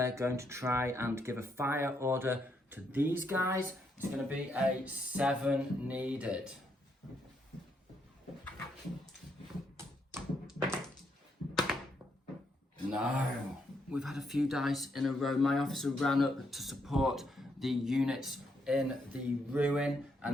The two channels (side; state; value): both; normal; correlation 0.76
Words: going to try and give a fire order to these guys. It's going to be a 7 needed. No. We've had a few dice in a row. My officer ran up to support the units in the ruin,